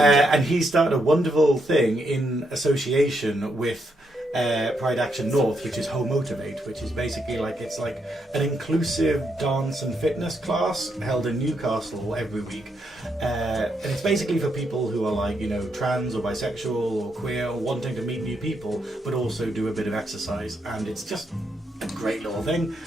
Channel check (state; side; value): normal; both; correlation 0.79